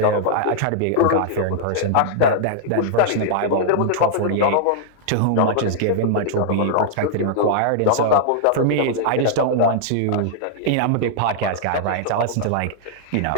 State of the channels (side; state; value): both; different; correlation -0.01